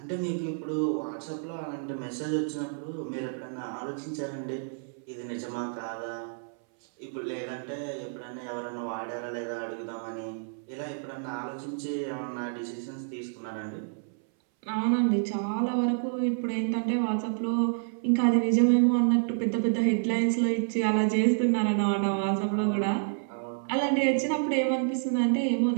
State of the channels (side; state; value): left; silent; 59 dB below the other